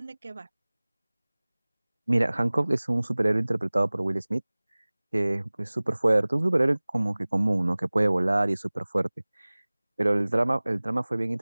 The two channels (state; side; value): inverted; both; correlation -1.00